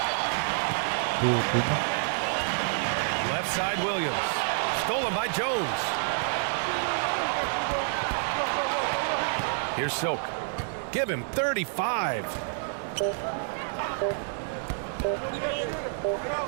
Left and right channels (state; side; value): silent; left; 59 dB below the other